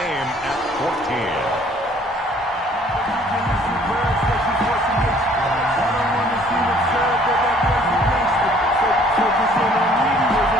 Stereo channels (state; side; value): normal; both; correlation 0.58